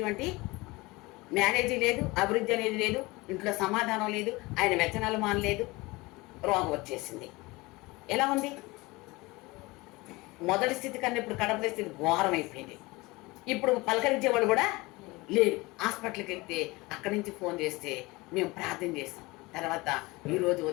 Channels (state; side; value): quieter; right; 22.7 dB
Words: మ్యారేజీ లేదు, అభివృద్ధి అనేది లేదు, ఇంట్లో సమాధానం లేదు, ఆయన వ్యచనాలు మానలేదు, రోగం వచ్చేసింది. ఎలా ఉంది? మొదటి స్థితి కన్నా ఇప్పుడు కడపల స్థితి ఘోరం అయిపోయింది. ఇప్పుడు పలకరించేవాడు కూడా లేరు. హాస్పిటల్కి వెళ్తే అక్కడి నుంచి ఫోన్ చేస్తే మేము ప్రార్థన చేస్తాం. తర్వాత ఈరోజు